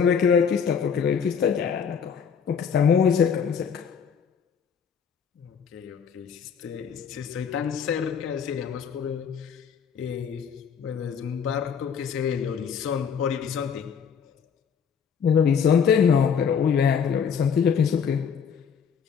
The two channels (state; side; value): quieter; right; 6.9 dB